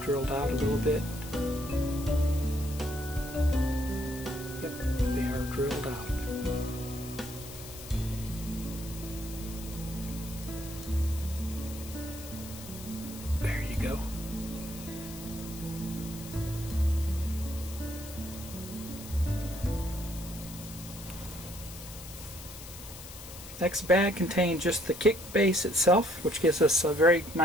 drilled out a little bit. Yep, they are drilled out. There you go. Next bag contained just the kick base itself, which gives us a very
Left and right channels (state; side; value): noise; left; hiss, 14 dB below the sound